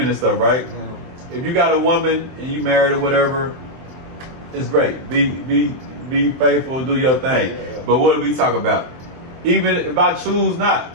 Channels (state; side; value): late; left; 23 ms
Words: and stuff, right? If you got a woman and you married or whatever, it's great. Be faithful, do your thing. But what do we talk about? Even if I choose